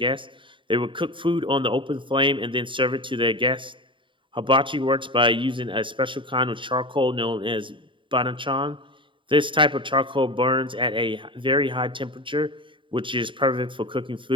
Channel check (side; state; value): left; late; 0.24 ms